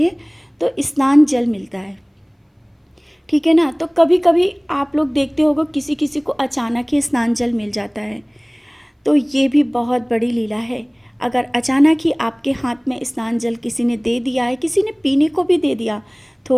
तो स्नान जल मिलता है, ठीक है ना। तो कभी कभी आप लोग देखते होगे किसी किसी को अचानक ही स्नान जल मिल जाता है, तो ये भी बहुत बड़ी लीला है। अगर अचानक ही आपके हाथ में स्नान जल किसी ने दे दिया है, किसी ने पीने को भी दे दिया,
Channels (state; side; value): identical; both; correlation 1.00